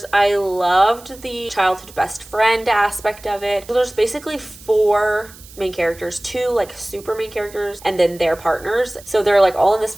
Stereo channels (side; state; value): right; noise; hiss, 21 dB below the sound